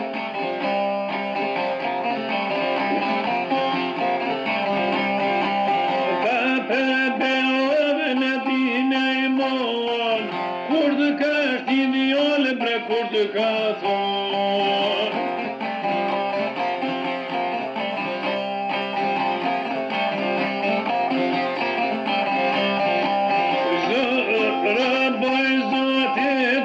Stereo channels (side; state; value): both; identical; correlation 1.00